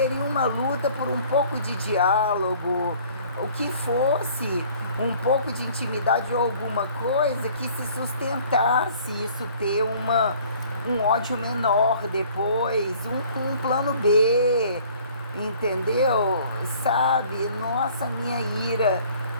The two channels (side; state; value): both; inverted; correlation -0.54